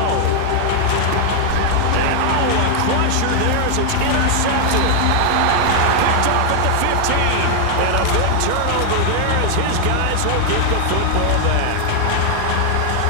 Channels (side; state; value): both; different; correlation 0.00